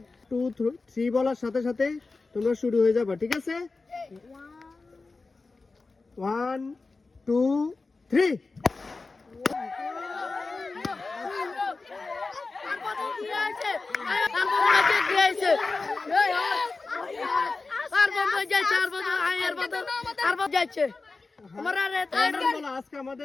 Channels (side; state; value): right; quieter; 3.8 dB